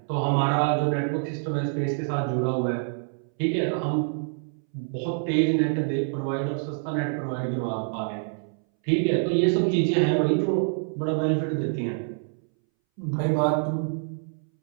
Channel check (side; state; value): left; silent; 61 dB below the other